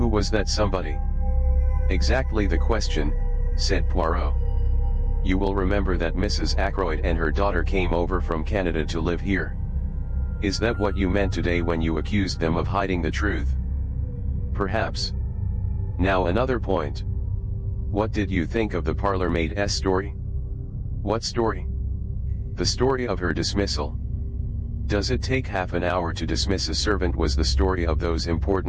was that somebody? Exactly the question, said Poirot. You will remember that Mrs. Ackroyd and her daughter came over from Canada to live here. Is that what you meant today when you accused them of hiding the truth? Perhaps. Now another point. What did you think of the parlour-maid's story? What story? The story of her dismissal. Does it take half an hour to dismiss a servant? Was the story of those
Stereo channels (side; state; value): both; identical; correlation 1.00